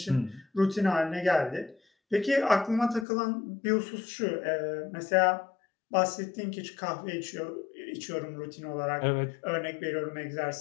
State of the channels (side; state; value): right; drops out; at 3.1 s